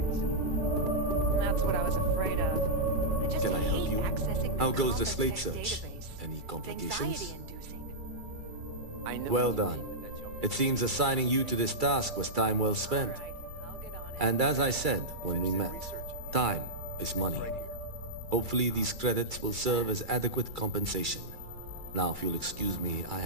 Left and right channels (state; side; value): late; left; 2.3 ms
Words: That's what I was afraid of. I just Can I help hate you? accessing How the goes the Compass slate Tech search? database. Any It's complications? anxiety-inducing. I know Well what you done. mean, but you're- It seems assigning you to this task was time well spent. And as I said when we met, time is money. Hopefully these credits will serve as adequate compensation. Now, if you'll excuse me, I